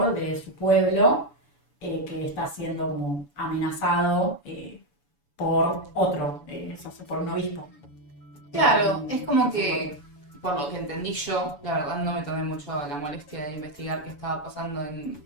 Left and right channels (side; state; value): right; late; 7.0 ms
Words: de su pueblo que está siendo como amenazado por otro, por un obispo. Claro, es como que, por lo que entendí yo, la verdad no me tomé mucho la molestia de investigar qué estaba pasando en